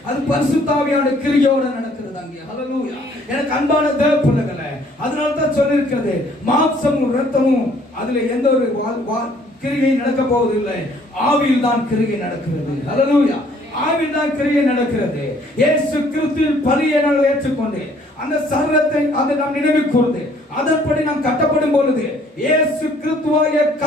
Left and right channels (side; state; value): both; normal; correlation 0.61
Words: அது பரிசுத்த ஆவியானவருடைய கிரியையோட நடக்கிறது அங்கே. ஹல்லேலூயா. எனக்கு அன்பான தேவப்பிள்ளைகளே, அதனால தான் சொல்லியிருக்கிறது, மாம்சமும் இரத்தமும் அதுல எந்த ஒரு கிரியை நடக்க போவதில்லை. ஆவியில் தான் கிரியை நடக்கிறது. ஹல்லேலூயா. ஆவியில் தான் கிரியை நடக்கிறது. இயேசு கிறிஸ்துவின் பலியை நாங்கள் ஏற்றுக்கொண்டு அந்த சரீரத்தை அதை நாம் நினைவு கூர்ந்து அதன்படி நாம் கட்டப்படும் பொழுது இயேசு கிறிஸ்துவாகிய